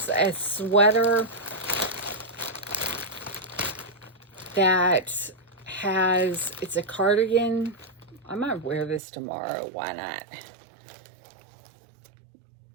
a sweater that has, it's a cardigan. I might wear this tomorrow. Why not?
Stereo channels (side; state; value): left; drops out; at 9.0 s